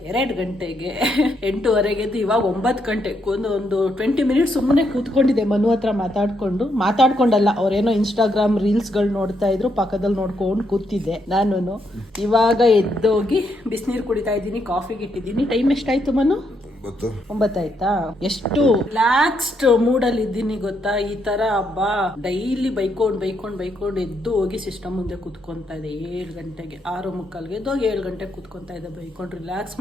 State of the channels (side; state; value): both; normal; correlation 0.77